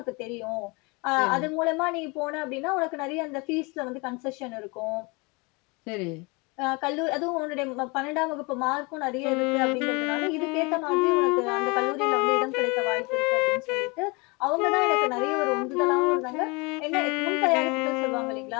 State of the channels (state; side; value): quieter; right; 28.1 dB